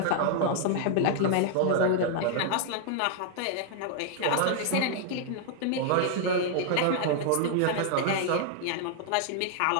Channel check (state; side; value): different; both; correlation -0.01